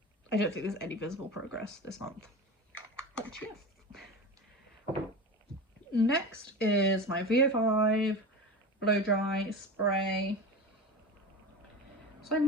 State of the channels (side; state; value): both; normal; correlation 0.28